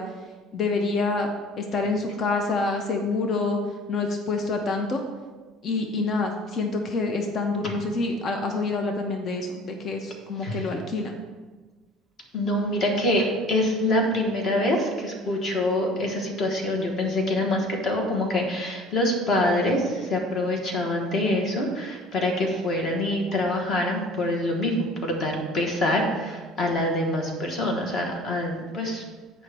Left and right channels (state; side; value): normal; both; correlation 0.47